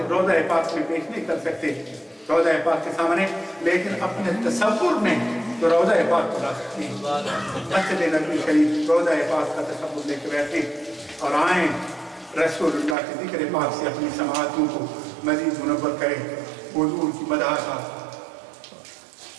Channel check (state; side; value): drops out; left; at 13.0 s